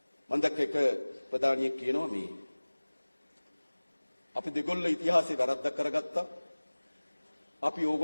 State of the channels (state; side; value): inverted; both; correlation -1.00